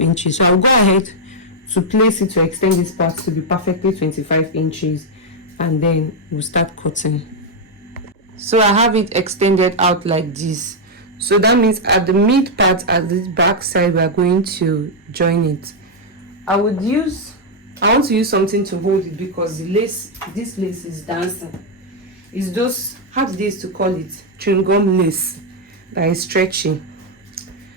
So I'll go ahead to place it to extend this part to be perfectly 25 inches, and then we'll start cutting. So I have it extended out like this. So that means at the mid part, at the back side, we are going to join it. I want to use something to hold it because the lace, this lace is dancing. It's those, how do they used to call it, chewing gum lace that is stretching.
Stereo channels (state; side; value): normal; both; correlation -0.01